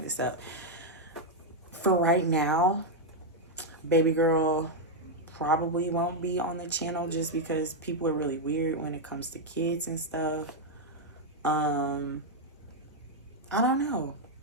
up. For right now, baby girl probably won't be on the channel just because people are really weird when it comes to kids and stuff. I don't know,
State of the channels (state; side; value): normal; both; correlation 0.00